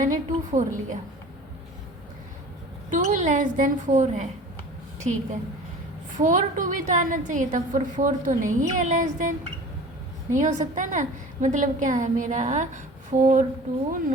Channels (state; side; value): normal; both; correlation 0.41